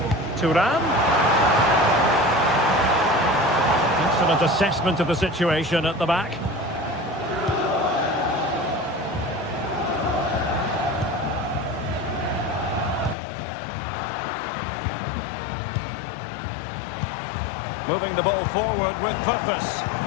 Thuram. Excellent assessment of the situation at the back. Moving the ball forward with purpose.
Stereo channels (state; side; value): drops out; right; at 13.2 s